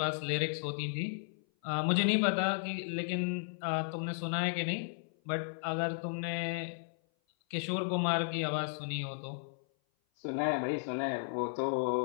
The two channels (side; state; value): right; silent; 55 dB below the other